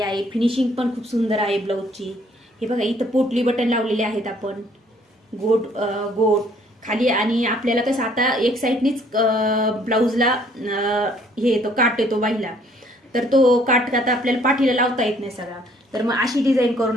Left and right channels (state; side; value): normal; both; correlation 0.62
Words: आहे. फिनिशिंग पण खूप सुंदर आहे ब्लाऊजची. हे बघा, इथं पोटली बटन लावलेले आहेत आपण, गोट गोट खाली. आणि आपल्याला कसं आता एक साईडनीच ब्लाऊजला हे येतो, काट येतो बाईला, तर तो काट आता आपल्याला पाठीला लावता येत नाही सगळा. तर मग अशी डिझाईन करून